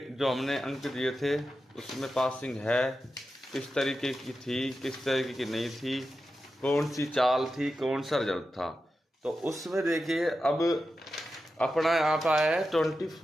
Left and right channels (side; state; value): both; normal; correlation 0.91